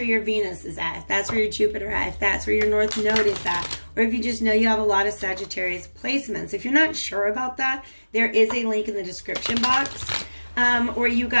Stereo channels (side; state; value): both; inverted; correlation -1.00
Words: your Venus is at, if that's where your Jupiter at, if that's where your North Node is at, or if you just know you have a lot of Sagittarius placements. If you're not sure about that, there is a link in the description box where you